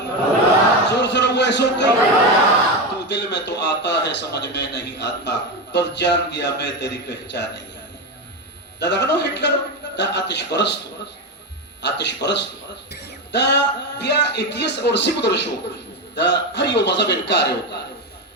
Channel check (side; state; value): both; normal; correlation 0.15